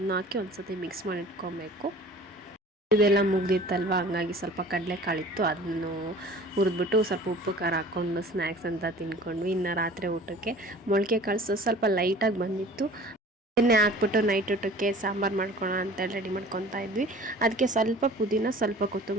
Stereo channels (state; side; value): normal; both; correlation 0.45